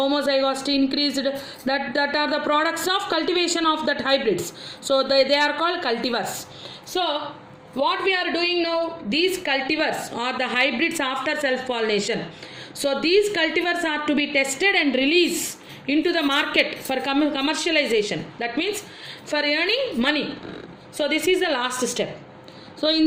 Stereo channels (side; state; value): both; identical; correlation 1.00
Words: increased. That are the products of cultivation of that hybrids. So they are called cultivars. So what we are doing now, these cultivars are the hybrids after self-pollination. So these cultivars are to be tested and released into the market for commercialization. That means for earning money. So this is the last step. So in